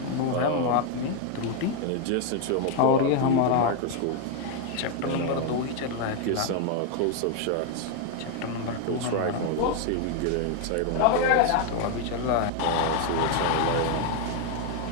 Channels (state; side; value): different; both; correlation 0.01